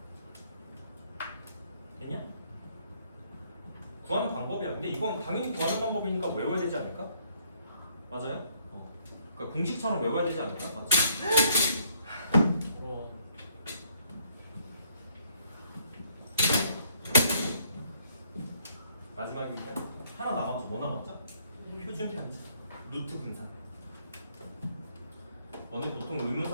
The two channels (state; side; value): inverted; both; correlation -0.67